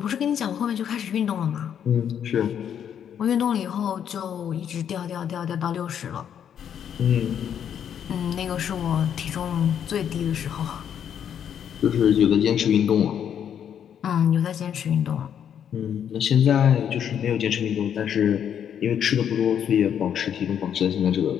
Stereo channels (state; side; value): quieter; right; 8.8 dB